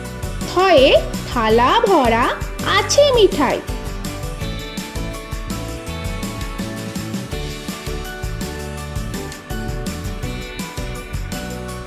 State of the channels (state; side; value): identical; both; correlation 1.00